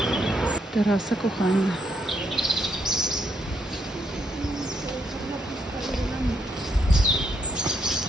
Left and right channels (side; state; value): both; normal; correlation 0.76